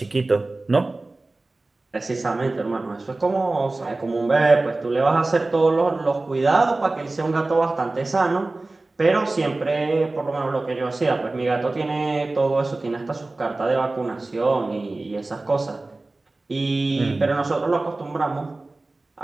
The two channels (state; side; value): quieter; left; 3.1 dB